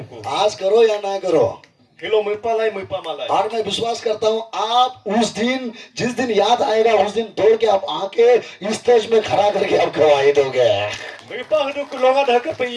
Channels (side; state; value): both; identical; correlation 1.00